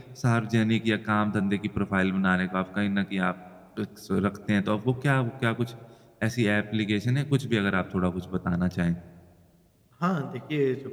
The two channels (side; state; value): both; identical; correlation 1.00